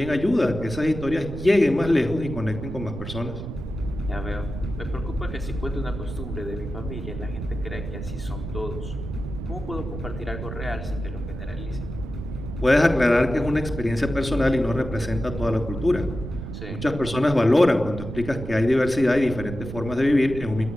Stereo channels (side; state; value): right; noise; rumble, 8 dB below the sound